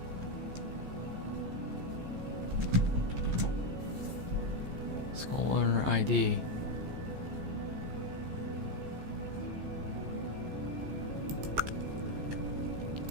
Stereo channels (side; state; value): left; late; 14 ms